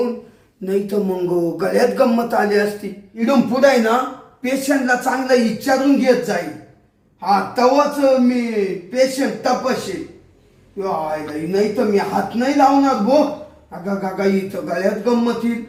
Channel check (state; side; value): identical; both; correlation 1.00